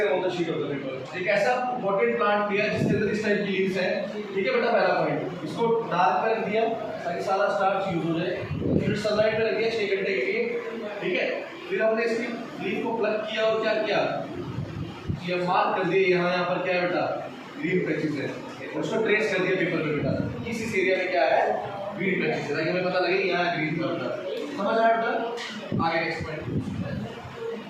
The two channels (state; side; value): identical; both; correlation 1.00